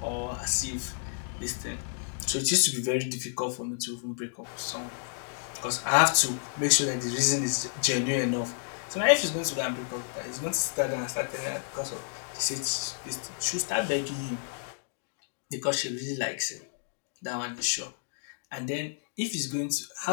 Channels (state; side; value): silent; right; digital silence